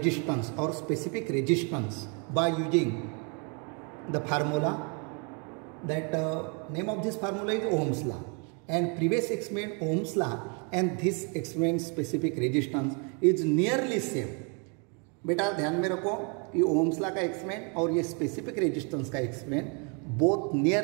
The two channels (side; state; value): left; quieter; 35.8 dB